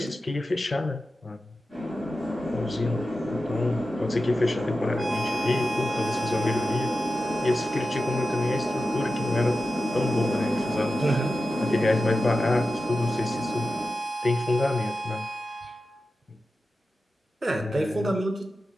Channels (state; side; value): normal; both; correlation 0.92